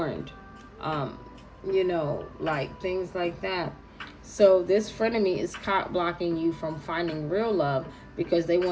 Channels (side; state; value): both; identical; correlation 1.00